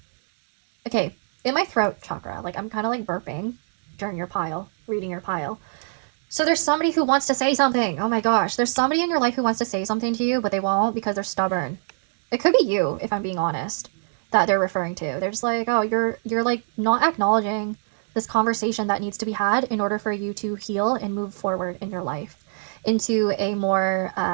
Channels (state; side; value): silent; left; 63 dB below the other